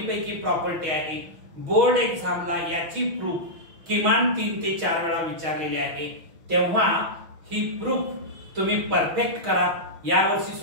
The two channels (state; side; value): late; left; 6.1 ms